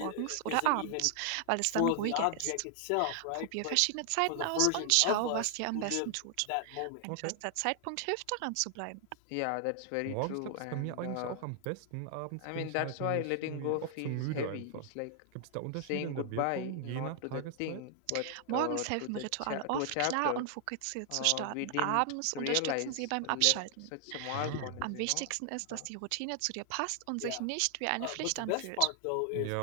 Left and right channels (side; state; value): both; different; correlation 0.00